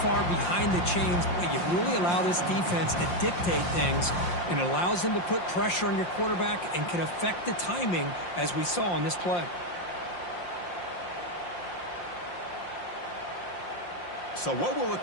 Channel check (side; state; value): right; late; 5.7 ms